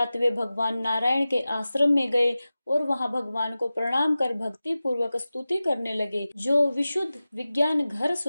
वे भगवान नारायण के आश्रम में गए और वहां भगवान को प्रणाम कर भक्ति पूर्वक स्तुति करने लगे। जो विशुद्ध विज्ञान घर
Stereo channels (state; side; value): inverted; both; correlation -0.96